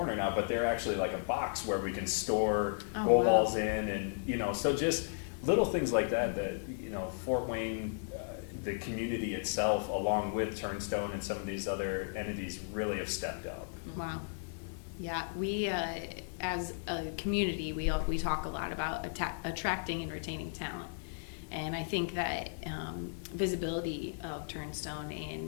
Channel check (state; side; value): silent; right; digital silence